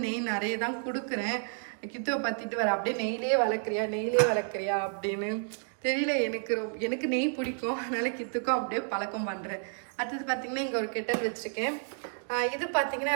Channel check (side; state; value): left; silent; 57 dB below the other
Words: நெய் நிறைய தான் கொடுக்குறேன். கித்துவை பற்றிட்டு வர அப்படியே நெய்லே வளர்க்குறியா அப்படின்னு தெரியல. எனக்கு நெய் பிடிக்கும், அதனால் கித்துக்கும் அப்படியே பழக்கம் பண்ணுறேன். அடுத்தது பார்த்திங்கன்னா இங்கே ஒரு கெட்டல் வச்சுருக்கேன். இது பார்த்திங்கன்னா